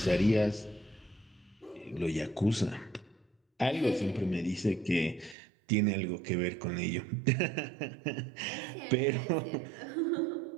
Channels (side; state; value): left; drops out; at 5.4 s